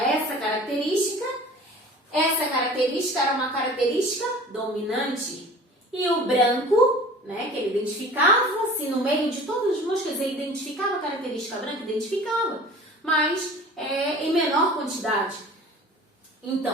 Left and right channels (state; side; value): normal; both; correlation 0.43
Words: essa característica era uma característica dominante. E o branco, né, que ele identificava, se no meio de todas as moscas ele identificava a característica branca, identificava, mas em menor quantidade.